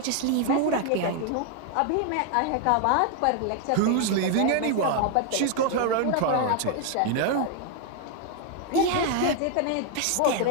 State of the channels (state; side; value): different; both; correlation 0.00